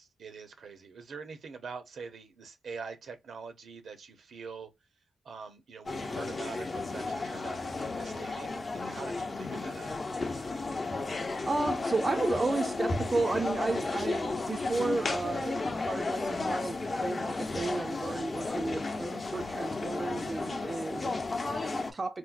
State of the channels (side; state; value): both; normal; correlation 0.91